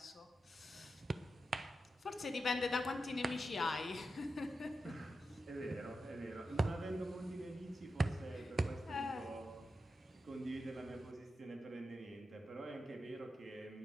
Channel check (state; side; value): normal; both; correlation 0.89